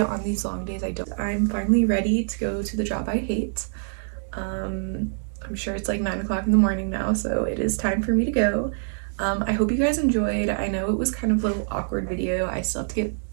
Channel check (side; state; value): left; silent; digital silence